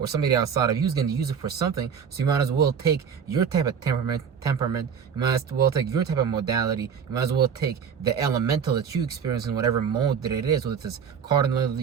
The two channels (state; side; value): quieter; left; 7.2 dB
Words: somebody outside of you is going to use it for something. So you might as well take your type of temperament. You might as well take your type of modality. You might as well take the elemental that you experience in whatever mode that it is, whether it's cardinal